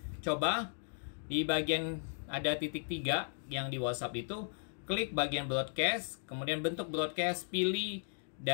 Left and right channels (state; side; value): silent; right; digital silence